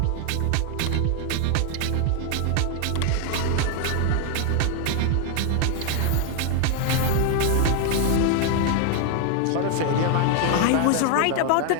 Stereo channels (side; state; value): both; different; correlation 0.01